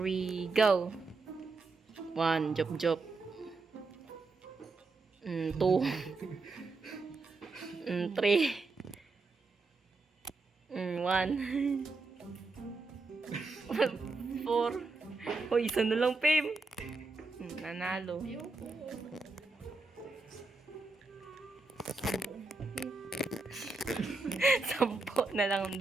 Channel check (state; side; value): quieter; left; 3.7 dB